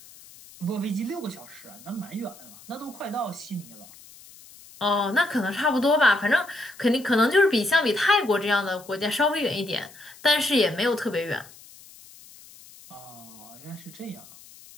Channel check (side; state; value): left; noise; hiss, 21 dB below the sound